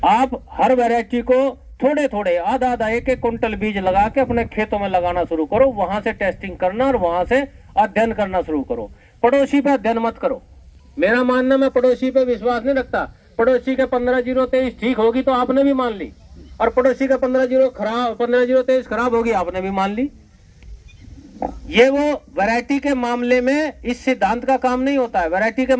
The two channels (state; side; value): identical; both; correlation 1.00